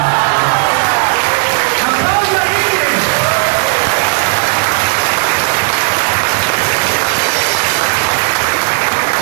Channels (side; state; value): left; silent; 71 dB below the other